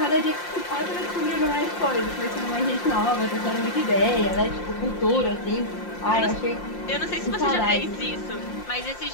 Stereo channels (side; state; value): right; late; 5.7 ms